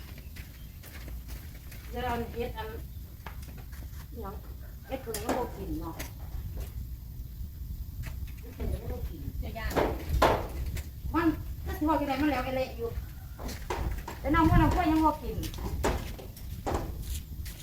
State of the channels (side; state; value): both; identical; correlation 1.00